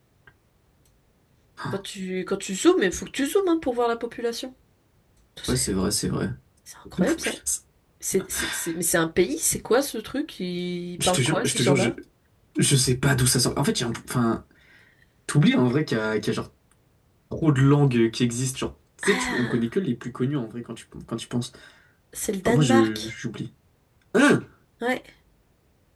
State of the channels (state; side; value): identical; both; correlation 1.00